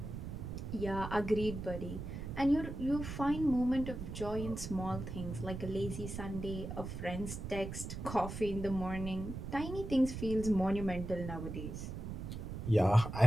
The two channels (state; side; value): noise; right; rumble, 7 dB below the sound